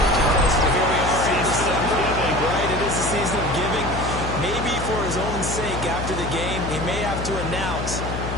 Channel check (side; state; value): left; noise; hum, 6 dB below the sound